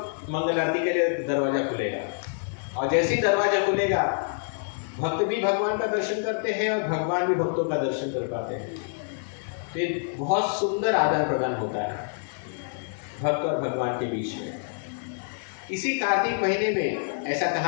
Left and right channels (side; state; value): right; silent; 58 dB below the other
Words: मंगल आरती के लिए दरवाजा खुलेगा। और जैसे ही दरवाजा खुलेगा भक्त भी भगवान का दर्शन करते हैं और भगवान भी भक्तों का दर्शन कर पाते हैं। तो ये बहुत सुंदर आदान प्रदान होता है भक्त और भगवान के बीच में। इसी कार्तिक महीने में ऐसा